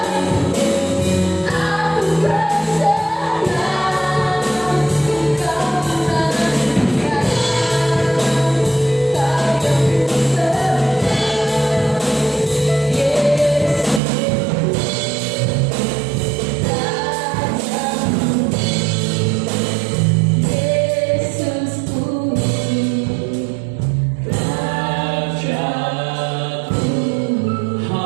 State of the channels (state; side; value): drops out; left; at 14.0 s